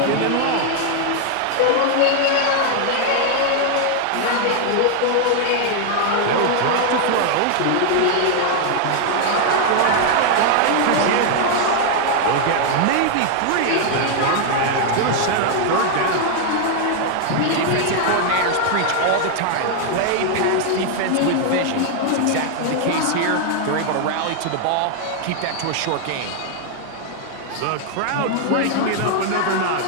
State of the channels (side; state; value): both; different; correlation 0.00